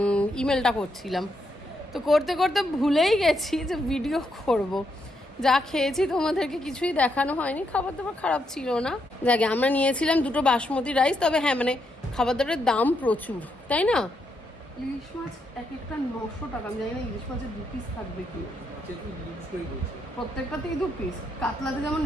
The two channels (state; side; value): normal; both; correlation 0.79